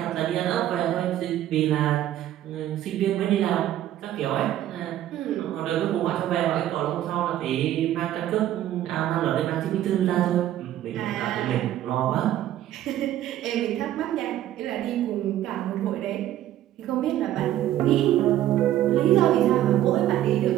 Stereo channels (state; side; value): quieter; left; 12.7 dB